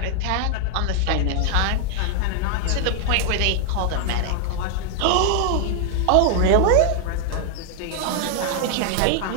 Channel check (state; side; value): different; both; correlation 0.00